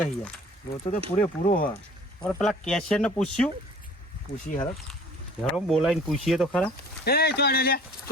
યાર લોચો તો પૂરો હોય અને પેલા કેશિયર ને પૂછ્યું પૂછી હરો હેરો બોલાવીને પૂછીએ તો ખરા એ ચોડે લે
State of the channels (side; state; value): both; normal; correlation 0.48